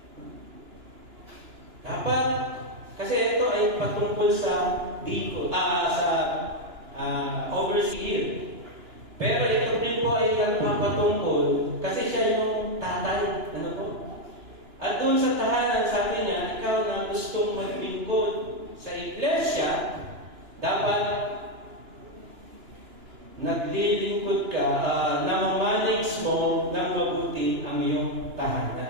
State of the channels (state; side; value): late; left; 2.9 ms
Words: Dapat, kasi ito ay patungkol sa dito, overseer. Pero ito din po ay patungkol kasi siya yung tatay. Ano po? At doon sa tahanan, sabi niya, ikaw na gustong maglingkod sa iglesia, dapat naglilingkod ka, namamanage mo ng mabuti ang iyong